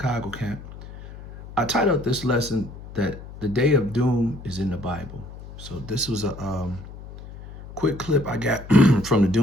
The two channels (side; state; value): left; noise; hum, 14 dB below the sound